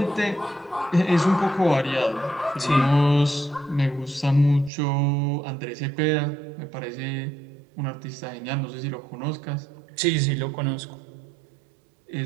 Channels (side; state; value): left; drops out; at 4.7 s